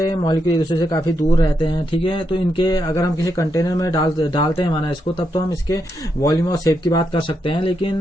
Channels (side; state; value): both; normal; correlation 0.82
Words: हैं, मॉलिक्यूल एक दूसरे से काफी दूर रहते हैं, ठीक है। तो इनके अगर हम किसी कंटेनर में डालते हैं माना इसको, तब तो हम इसके वॉल्यूम और शेप की बात कर सकते हैं।